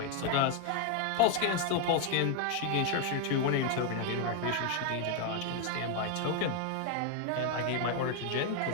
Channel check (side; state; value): both; different; correlation 0.01